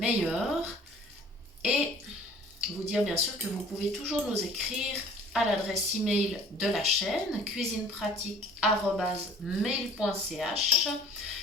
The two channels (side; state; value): both; normal; correlation 0.50